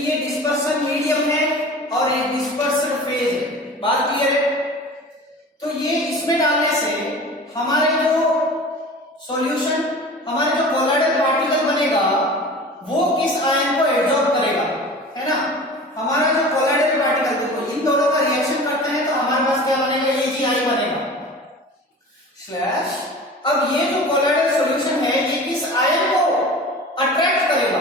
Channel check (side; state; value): both; normal; correlation 0.38